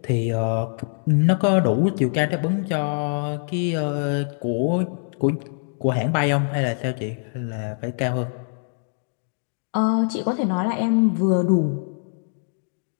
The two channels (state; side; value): silent; right; digital silence